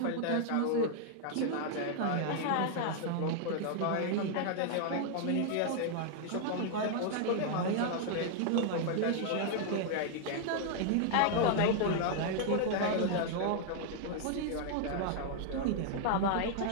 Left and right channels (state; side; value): different; both; correlation 0.00